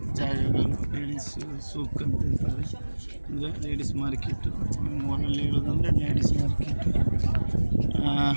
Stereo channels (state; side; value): inverted; both; correlation -1.00